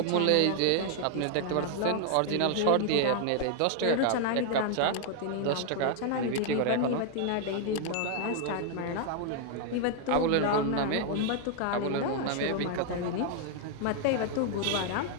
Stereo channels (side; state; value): both; different; correlation 0.00